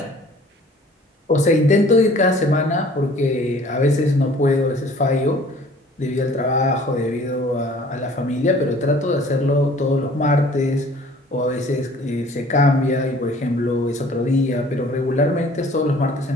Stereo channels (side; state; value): both; normal; correlation 0.52